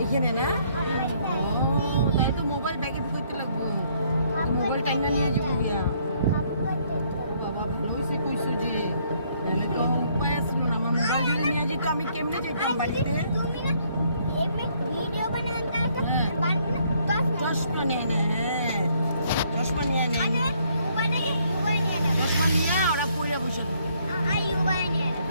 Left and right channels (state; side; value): inverted; both; correlation -0.67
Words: এখানে না তাই তো মোবাইল ব্যাগে ঢুকাইতে লাগবো মোবাইল টাইনা নিয়ে যাবো গিয়া বাবা ভালো হয়েছে কইছো যে তো উপায় আসল না আমার মোবাইল যদি নিয়ে যেত আমি কেমনে যাইতাম বাড়িতে চশমা নিয়ে নে চশমা নিয়ে নে চশমা নিয়ে ওরা পড়ে বসে